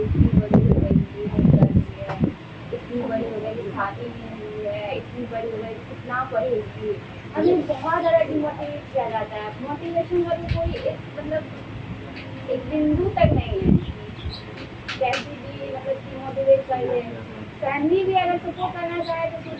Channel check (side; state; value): both; identical; correlation 1.00